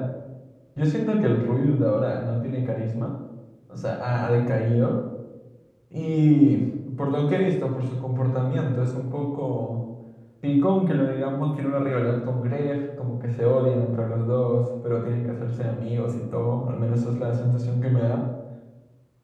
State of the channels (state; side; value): identical; both; correlation 1.00